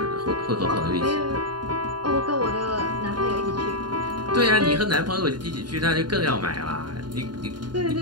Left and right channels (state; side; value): late; left; 0.70 ms